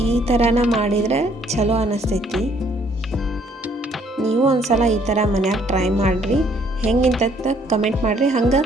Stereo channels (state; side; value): normal; both; correlation 0.64